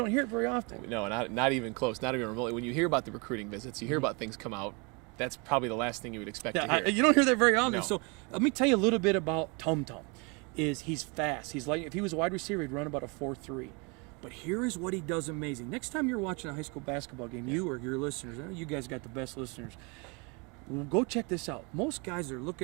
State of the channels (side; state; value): left; quieter; 30.6 dB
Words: hear it very often. No, not even close, not even remotely. When you hear about the recruiting visits, you hear about things come out, that's probably the last thing you would expect to hear. You don't hear that very often. No. So let me tell you a little bit about Tum Tum. He's fast. He's like, if he was a wide receiver, he'd run about a 4.3. But here is what he does amazing. Next time you're watching a high school basketball game, you or your listeners, I know you guys got the best listeners, go check this out. Most guys are